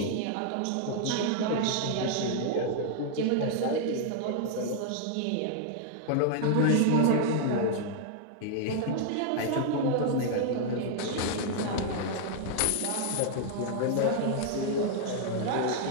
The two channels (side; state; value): both; different; correlation -0.01